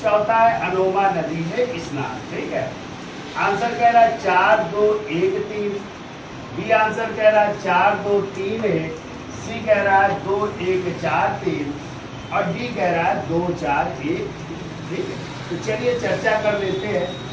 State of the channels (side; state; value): both; identical; correlation 1.00